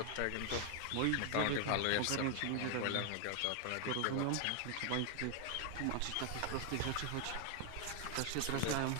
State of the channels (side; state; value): both; different; correlation 0.00